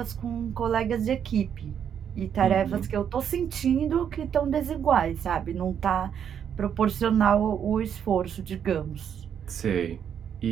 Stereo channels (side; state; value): left; quieter; 8.4 dB